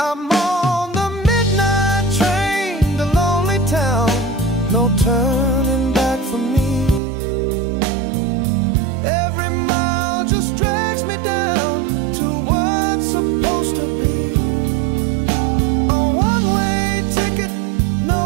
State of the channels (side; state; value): left; drops out; at 7.0 s